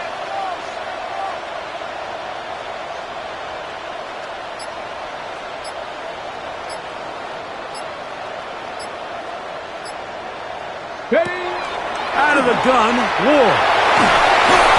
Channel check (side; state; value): both; identical; correlation 1.00